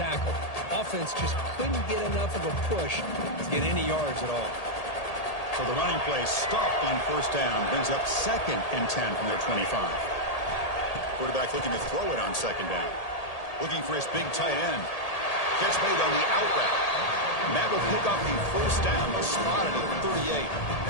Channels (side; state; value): right; late; 1.8 ms